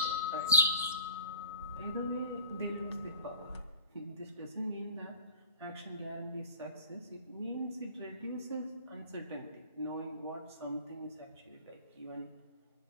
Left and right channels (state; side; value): inverted; both; correlation -0.46